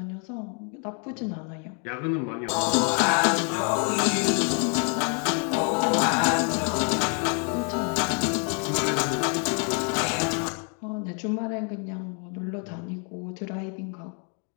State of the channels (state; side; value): quieter; right; 39.4 dB